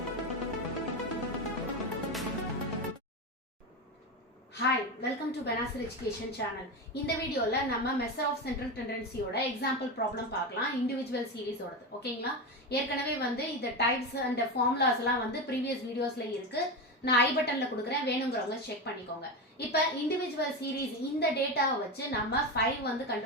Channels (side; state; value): both; normal; correlation 0.18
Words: welcome to Benasir Education channel. In the video la நம்ம measure of central tendency ஓட example problem பார்க்கலாம் individual series ஓடது ஓகேங்களா ஏற்கனவே வந்து இந்த types and formulas எல்லாம் வந்து previous videosல இருக்கு நான் ஐ பட்டன்ல கொடுக்கிறேன் வேணும்ங்கறவங்க செக் பண்ணிக்கோங்க இப்போ individual series இந்த டேட்டாவை வச்சு நம்ம 5